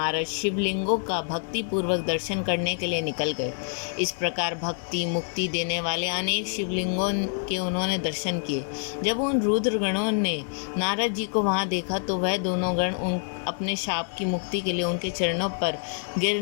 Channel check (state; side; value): silent; right; 60 dB below the other